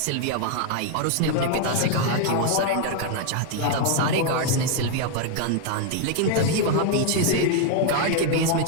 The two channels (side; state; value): both; different; correlation 0.00